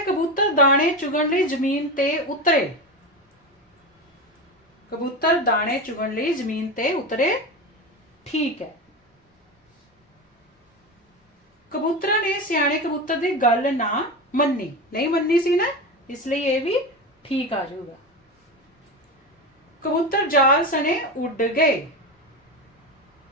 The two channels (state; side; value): normal; both; correlation 0.21